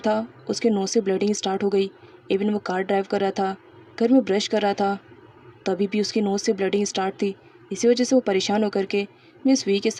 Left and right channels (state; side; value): identical; both; correlation 1.00